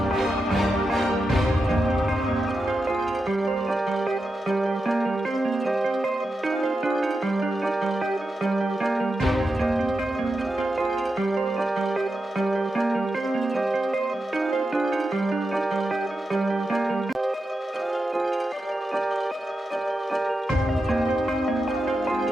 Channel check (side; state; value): both; normal; correlation 0.89